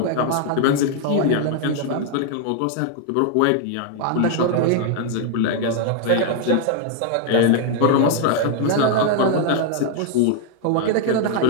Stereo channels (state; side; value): different; both; correlation 0.00